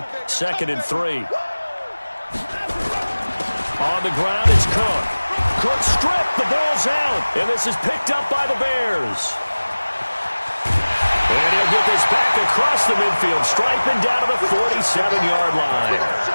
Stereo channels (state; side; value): inverted; both; correlation -1.00